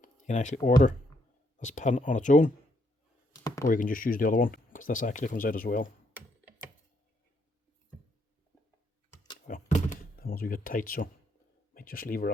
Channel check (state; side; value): normal; both; correlation 0.73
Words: You can actually order this pin on its own, or you can just use the other one, because this actually comes out as well. Well, that one's a bit tight, so I might just leave her